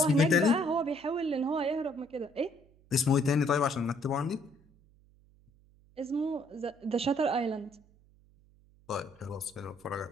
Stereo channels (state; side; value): noise; right; hum, 29 dB below the sound